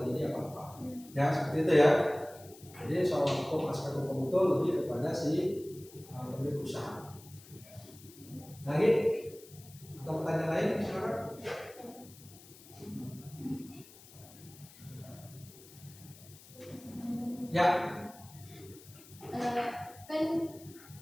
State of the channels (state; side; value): noise; left; hiss, 21 dB below the sound